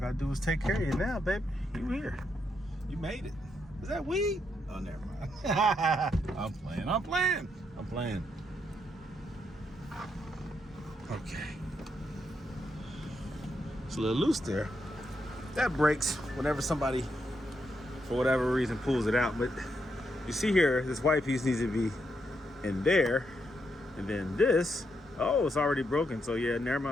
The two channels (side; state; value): both; normal; correlation 0.80